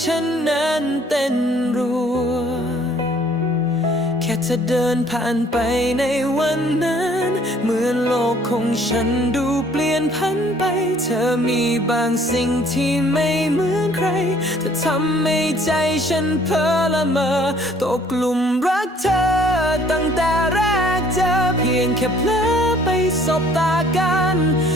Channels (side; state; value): both; normal; correlation 0.58